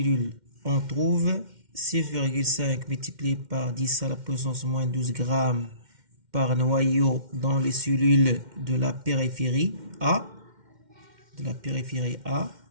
on trouve 6,5 multiplié par 10 à la puissance moins 12 grammes par noyau dans les cellules de la périphérie A,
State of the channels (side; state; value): left; late; 2.1 ms